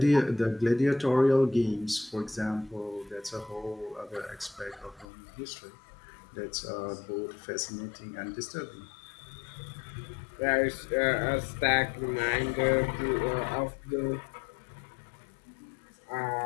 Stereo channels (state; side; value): drops out; right; at 5.1 s